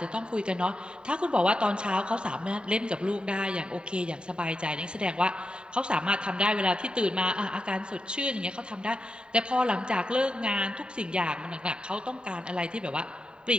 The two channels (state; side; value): late; left; 0.050 ms